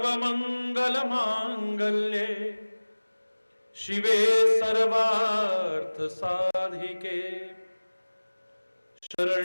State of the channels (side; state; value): both; inverted; correlation -1.00